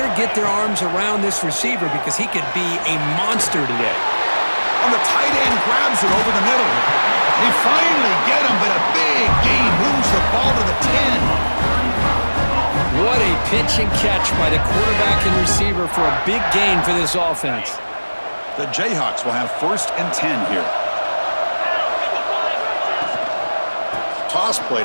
get their arms around this receiver because he could be a monster today. On the tight end, grabs it over the middle. They finally get him, but a big gain moves the ball to the 10. What a pitch and catch by the quarterback and receiver for a big gain for this offense. The Jayhawks will have 1st and 10 here. Toss play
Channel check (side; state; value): both; inverted; correlation -1.00